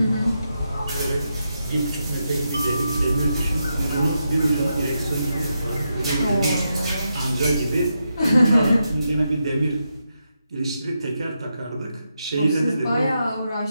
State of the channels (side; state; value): both; inverted; correlation -0.85